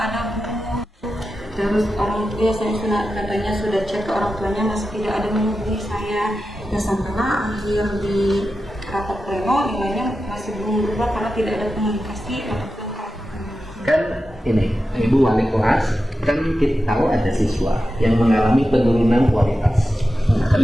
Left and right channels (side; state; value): both; normal; correlation 0.91